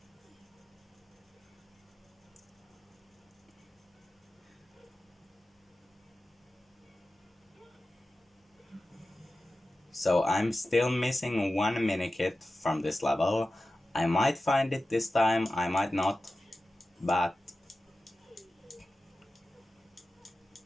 So I'm still missing one minikit from this level. I might find it this time, I might not, but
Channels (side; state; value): both; normal; correlation 0.94